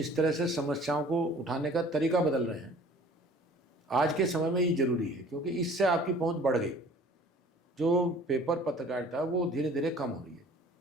तरह से समस्याओं को उठाने का तरीका बदल रहे हैं, आज के समय में ये ज़रूरी है, क्योंकि इससे आपकी पहुँच बढ़ गई। जो पेपर पत्रकारिता वो धीरे धीरे कम हो रही है।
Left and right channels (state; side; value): normal; both; correlation 0.50